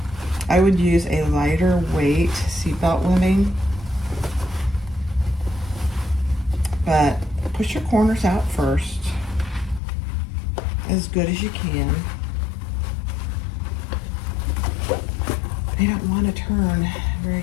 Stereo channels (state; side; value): drops out; right; at 9.8 s